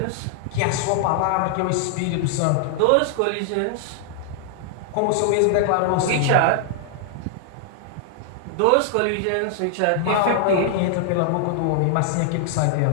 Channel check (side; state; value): both; different; correlation -0.01